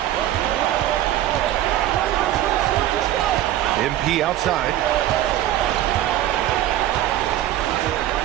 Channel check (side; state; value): left; quieter; 13.1 dB